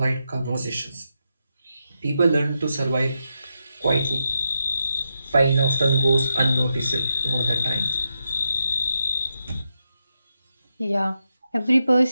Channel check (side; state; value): both; inverted; correlation -0.85